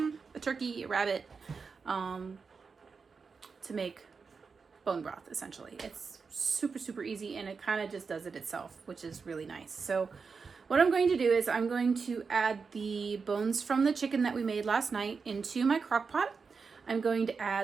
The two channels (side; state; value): left; quieter; 5.1 dB